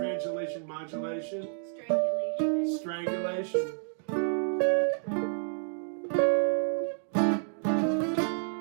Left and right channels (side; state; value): left; silent; 58 dB below the other